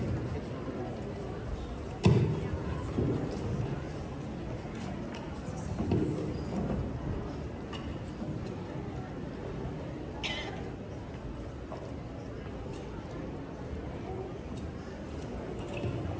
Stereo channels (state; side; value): identical; both; correlation 1.00